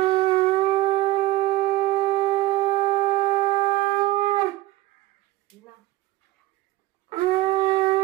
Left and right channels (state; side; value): quieter; left; 17.5 dB